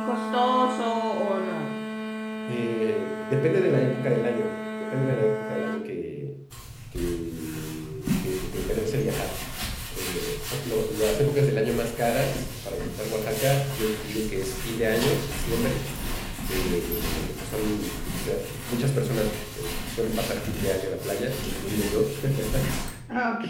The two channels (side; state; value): both; identical; correlation 1.00